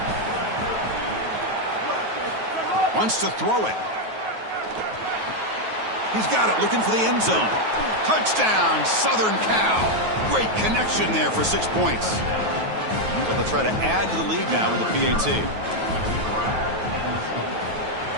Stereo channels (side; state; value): left; late; 9.3 ms